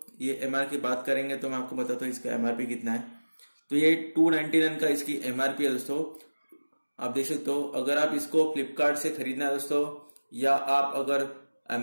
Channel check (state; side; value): inverted; both; correlation -1.00